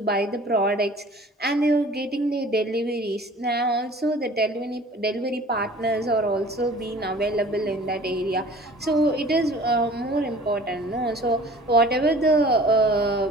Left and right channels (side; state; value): both; normal; correlation 0.47